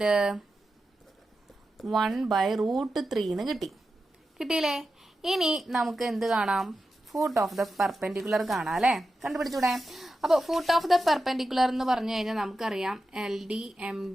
1/√3 എന്ന് കിട്ടിയില്ലേ? ഇനി നമുക്ക് എന്ത് കാണാം? ഫൂട്ട് ഓഫ് ദ പെർപെൻഡിക്കുലർ കാണാം അല്ലേ. കണ്ടുപിടിച്ചൂടെ? അപ്പോൾ ഫൂട്ട് ഓഫ് ദ പെർപെൻഡിക്കുലർ എന്ന് പറഞ്ഞു കഴിഞ്ഞാൽ നമുക്കറിയാം LD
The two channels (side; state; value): both; normal; correlation 0.91